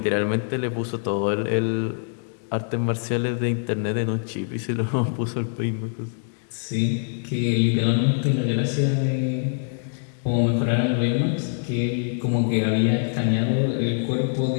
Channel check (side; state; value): right; silent; digital silence